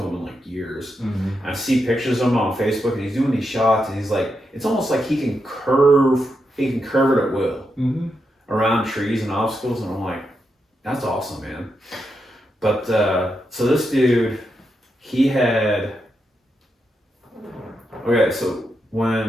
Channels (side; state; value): both; normal; correlation 0.84